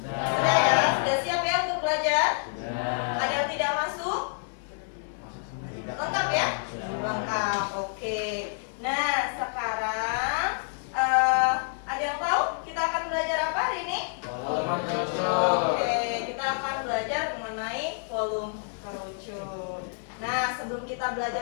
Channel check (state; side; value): silent; right; digital silence